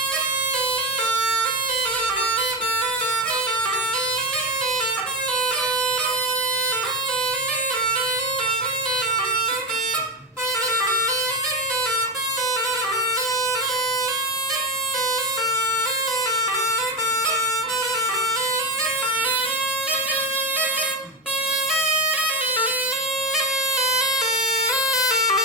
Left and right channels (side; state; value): both; normal; correlation 0.13